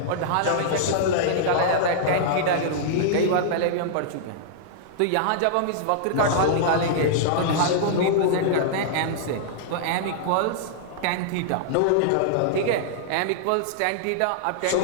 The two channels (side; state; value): both; different; correlation -0.02